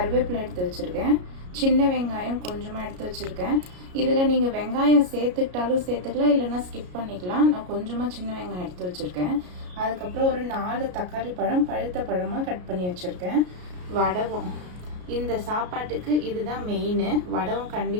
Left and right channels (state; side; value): late; left; 33 ms